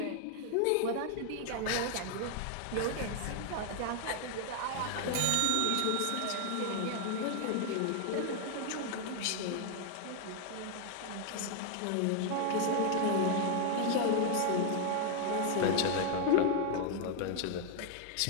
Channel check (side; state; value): both; different; correlation 0.00